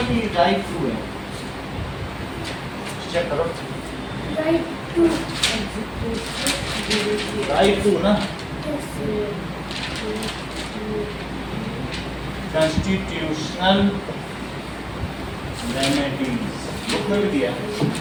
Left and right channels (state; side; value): identical; both; correlation 1.00